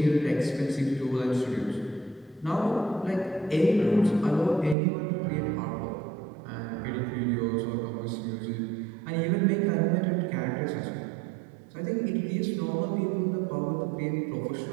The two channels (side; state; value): left; drops out; at 4.8 s